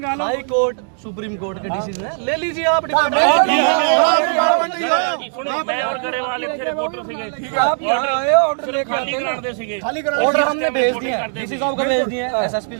हाई कोर्ट सुप्रीम कोर्ट के डिसीजन है, ले लीजिए आप डिपार्टमेंट। मैं और गरेवाल ਇੱਥੇ ਰਿਪੋਰटर ਸੀਗੇ आप यहाँ आए ऑर्डर लेके आते हैं। ਕਰਦੇ ਸੀਗੇ खाली करा। ऑर्डर हमने भेज दिए हैं, डीसी साहब को भेज दिए हैं, एसएसपी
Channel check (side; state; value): left; silent; digital silence